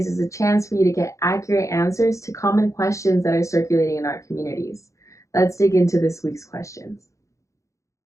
is a chance for you to get accurate answers to common questions that are circulating in our communities. Let's dig into this week's questions.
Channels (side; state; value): right; late; 0.15 ms